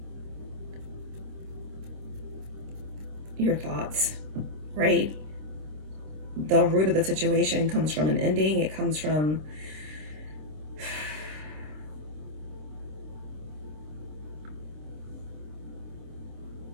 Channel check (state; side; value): late; left; 26 ms